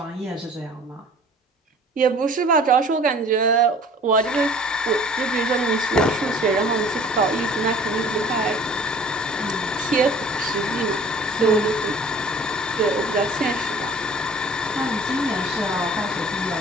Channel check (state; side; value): normal; both; correlation 0.48